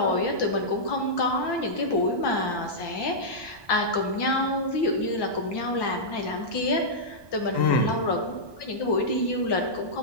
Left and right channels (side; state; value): right; late; 1.2 ms